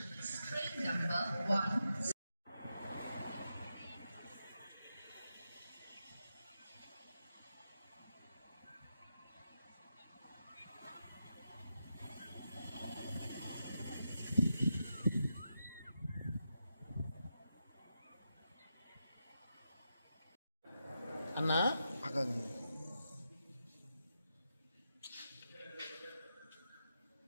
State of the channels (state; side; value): inverted; both; correlation -0.87